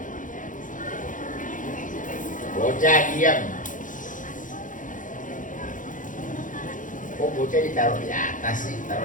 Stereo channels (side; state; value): right; late; 0.38 ms